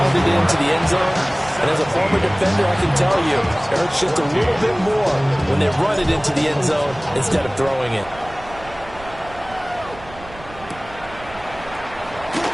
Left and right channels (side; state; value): right; noise; rumble, 18 dB below the sound